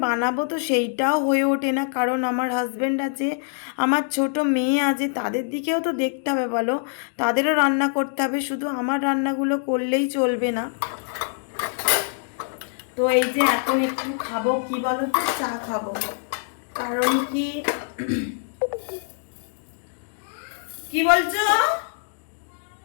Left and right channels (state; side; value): silent; right; digital silence